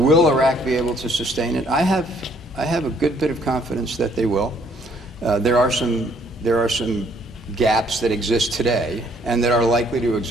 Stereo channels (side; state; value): both; normal; correlation 0.65